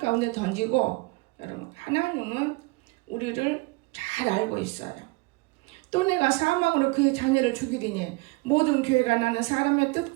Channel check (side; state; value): left; quieter; 25.7 dB